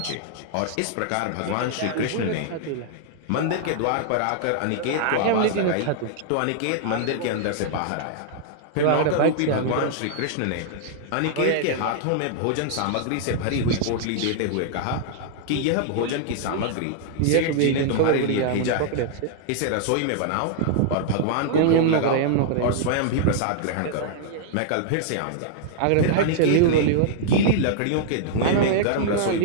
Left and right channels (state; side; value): different; both; correlation -0.01